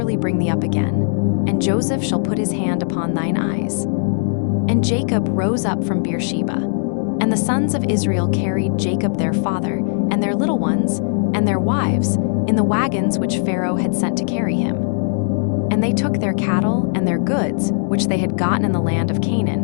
bring thee up again. And Joseph shall put his hand upon thine eyes. And Jacob rose up from Beersheba. And the sons of Israel carried Jacob their father, and their little ones, and their wives, in the wagons which Pharaoh had sent to carry him. And they took their cattle and their goods, which they had gotten in the land of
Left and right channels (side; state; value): right; silent; digital silence